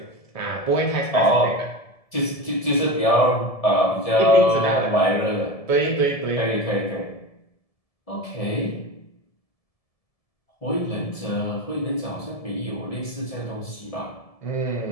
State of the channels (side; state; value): right; late; 1.7 ms